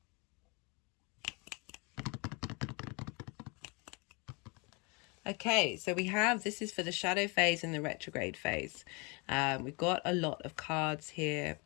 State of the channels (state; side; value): quieter; right; 29.8 dB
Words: Okay, so we have, this is for the shadow phase and the retrograde phase. We've got a lot of cards here.